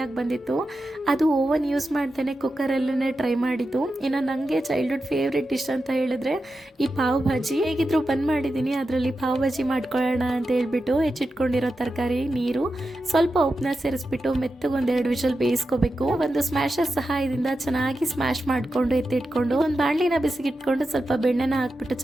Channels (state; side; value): normal; both; correlation 0.90